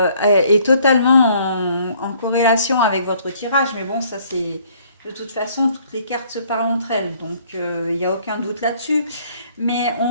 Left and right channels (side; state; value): both; inverted; correlation -0.61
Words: est totalement en corrélation avec votre tirage. Mais bon, ça c'est... De toute façon, toutes les cartes se parlent entre elles. Donc, il n'y a aucun doute là-dessus. Mais